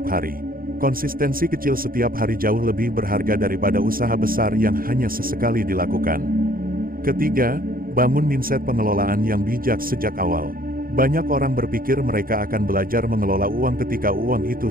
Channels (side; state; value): left; late; 0.42 ms